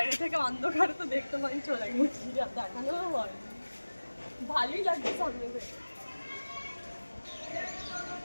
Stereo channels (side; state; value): both; inverted; correlation -1.00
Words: থেকে অন্ধকারে তো দেখতে পাই, চলে গেছি, দেখানো হয়, ভালোই লাগছে সামনে থেকে।